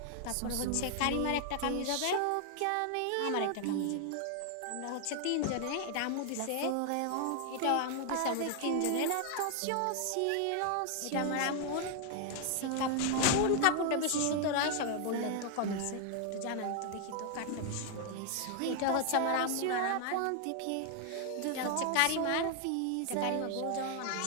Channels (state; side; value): different; both; correlation 0.00